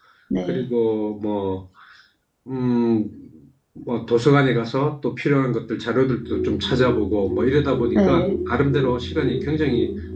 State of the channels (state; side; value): identical; both; correlation 1.00